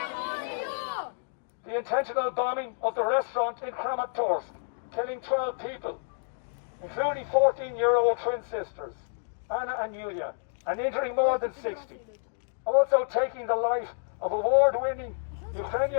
The intentional bombing of the restaurant in Kramatorsk, killing 12 people, including 14-year-old twin sisters, Anna and Yulia, and injuring more than 60. Also taking the life of award-winning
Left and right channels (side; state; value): right; silent; digital silence